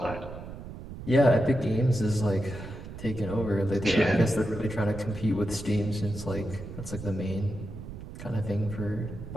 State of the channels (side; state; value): right; noise; rumble, 12 dB below the sound